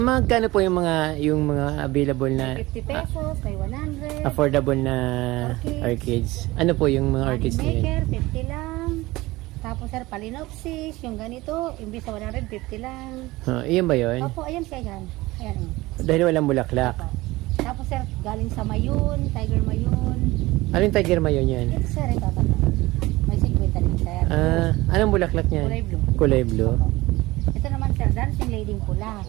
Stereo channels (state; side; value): quieter; left; 19.8 dB